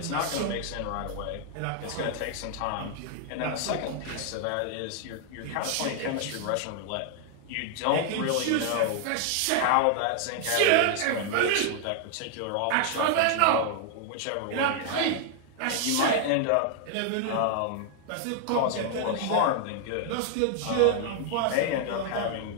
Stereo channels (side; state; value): both; different; correlation 0.00